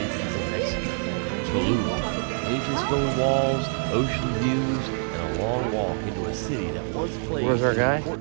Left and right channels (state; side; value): silent; left; 56 dB below the other